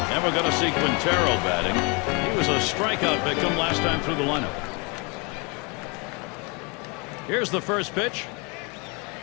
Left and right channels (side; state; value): right; quieter; 31.1 dB